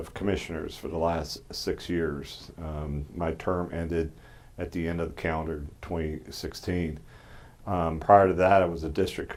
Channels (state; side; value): identical; both; correlation 1.00